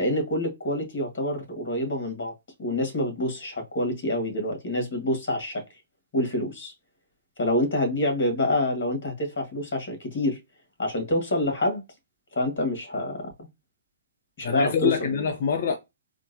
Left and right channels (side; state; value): both; inverted; correlation -0.39